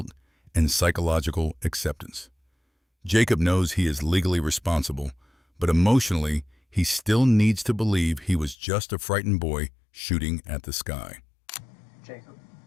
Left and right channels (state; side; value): drops out; right; at 8.6 s